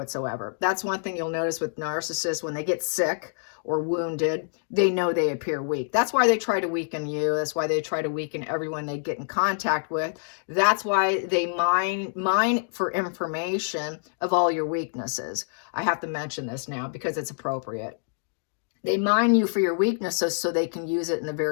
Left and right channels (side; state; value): right; silent; digital silence